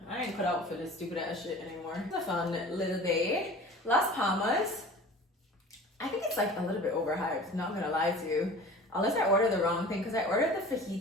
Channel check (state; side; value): normal; both; correlation 0.41